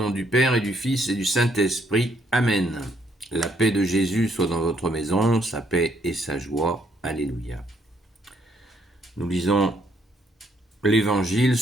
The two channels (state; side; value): normal; both; correlation 0.70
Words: du Père et du Fils et du Saint-Esprit. Amen. La paix de Jésus soit dans votre maison, sa paix et sa joie. Alléluia. Nous lisons l'Évangile